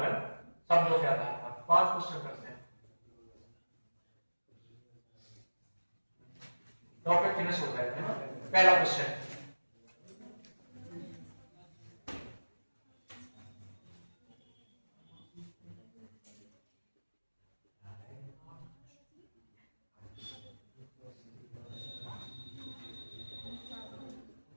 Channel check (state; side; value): inverted; both; correlation -1.00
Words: है ना, शब्दों के आधार पर 5 क्वेश्चन करते हैं। टॉपिक फिनिश हो जाएगा, है ना। पहला क्वेश्चन,